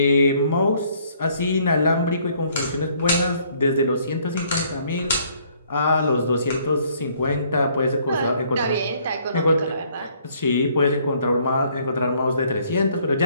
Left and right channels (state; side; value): inverted; both; correlation -0.63